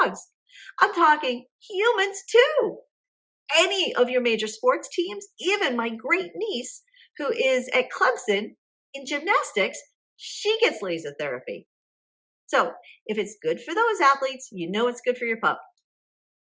dogs. I'm talking humans too. Any of your major sports teams, even my great niece who is at Clemson in gymnastics, she gets laser therapy. So if it's good for those athletes, you know it's good for your pup.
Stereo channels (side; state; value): both; identical; correlation 1.00